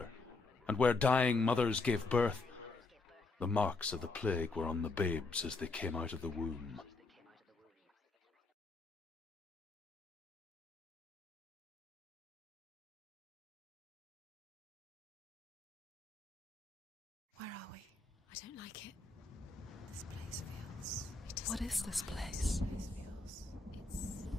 and where dying mothers gave birth, the marks of the plague were on the babes as they came out of the womb. Where are we? I don't like it. This place feels... What is this place? This place feels... It's...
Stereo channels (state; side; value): quieter; right; 3.5 dB